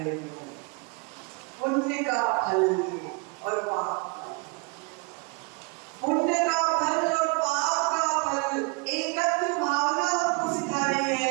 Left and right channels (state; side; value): quieter; left; 31.8 dB